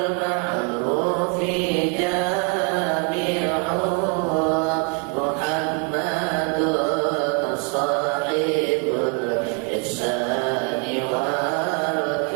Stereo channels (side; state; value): left; quieter; 37.3 dB